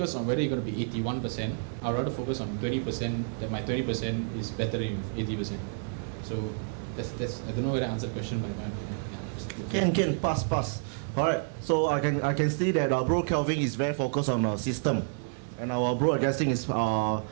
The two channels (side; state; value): left; silent; digital silence